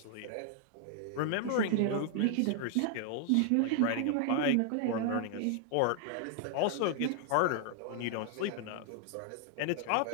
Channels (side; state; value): both; different; correlation 0.00